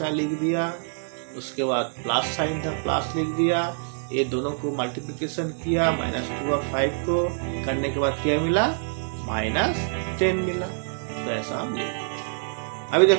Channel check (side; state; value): left; silent; 61 dB below the other